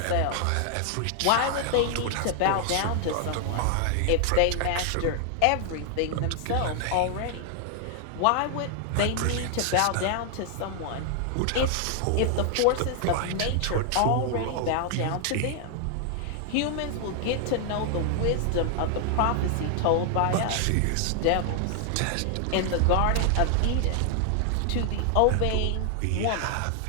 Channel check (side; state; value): both; different; correlation 0.00